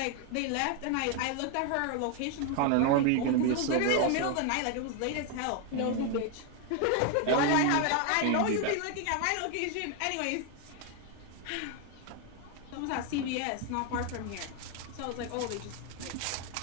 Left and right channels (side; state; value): both; different; correlation 0.01